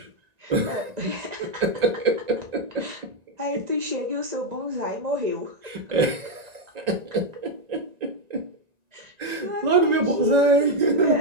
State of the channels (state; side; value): late; left; 1.9 ms